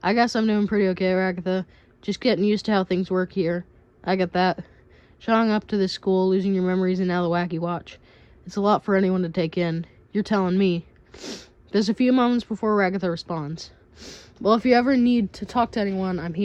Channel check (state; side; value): identical; both; correlation 1.00